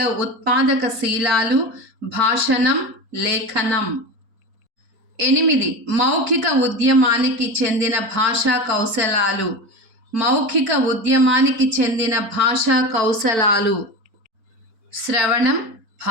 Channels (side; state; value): left; late; 4.5 ms